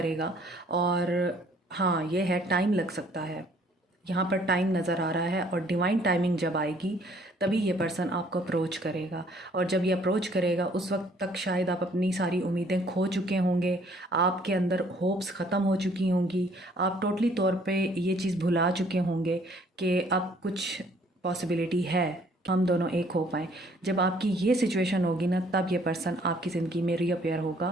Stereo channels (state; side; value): normal; both; correlation 0.60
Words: और हाँ, ये है, टाइम लग सकता है, यहाँ पर टाइम नज़र आ रहा है। और डिवाइन टाइमिंग जब आएगी तभी ये पर्सन आपको अप्रोच करेगा। और जब ये अप्रोच करेगा उस वक्त तक शायद आप अपनी सारी उम्मीदें खो चुके होंगे, आपके अंदर होप्स ख़त्म हो चुकी होंगी, आप टोटली तौर पे ये चीज़ भुला चुके होंगे कि अब कुछ पॉसिबिलिटी है हम दोनों एक हो पाएँ। जब आपकी ये सिचुएशन होगी ना, तब ये पर्सन आपकी ज़िंदगी में रीअपेयर होगा,